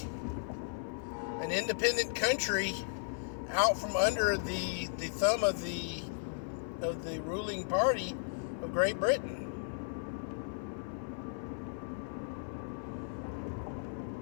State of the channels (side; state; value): right; silent; 54 dB below the other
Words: an independent country out from under the thumb of the ruling party of Great Britain.